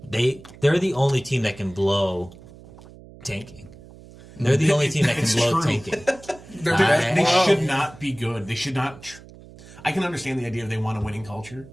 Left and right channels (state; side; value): noise; right; hum, 20 dB below the sound